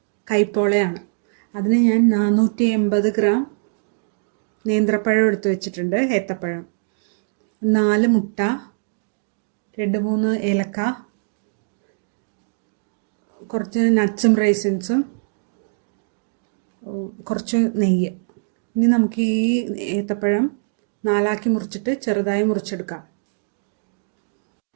കൈപ്പോളയാണ്. അതിന് ഞാൻ 480 ഗ്രാം നേന്ത്രപ്പഴം എടുത്ത് വെച്ചിട്ടുണ്ട്, ഏത്തപ്പഴം, 4 മുട്ട, 2-3 ഏലക്ക, കുറച്ച് നട്ട്സും റൈസിൻസും, കുറച്ച് നെയ്യ്. ഇനി നമുക്ക് ഈ ഏത്തപ്പഴം 4ആക്കി മുറിച്ചിട്ട് ചെറുതായി മുറിച്ചെടുക്കാം.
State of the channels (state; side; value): silent; left; digital silence